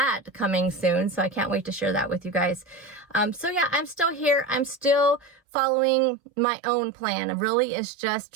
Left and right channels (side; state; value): left; drops out; at 5.4 s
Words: coming soon. So I can't wait to share that with you guys. So yeah, I'm still here. I'm still following my own plan. Really, it's just